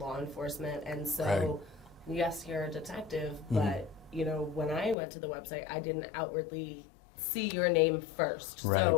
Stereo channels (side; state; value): right; drops out; at 5.0 s